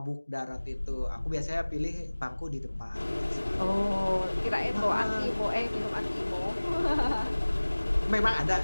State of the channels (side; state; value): both; inverted; correlation -1.00